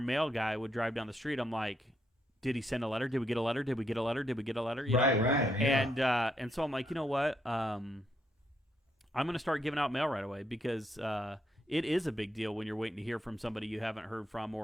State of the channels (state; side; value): normal; both; correlation 0.77